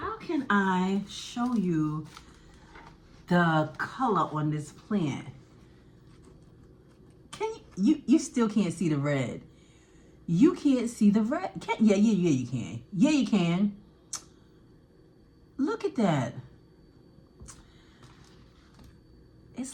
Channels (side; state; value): both; identical; correlation 1.00